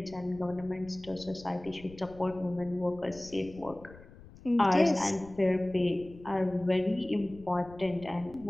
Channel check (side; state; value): left; noise; rumble, 20 dB below the sound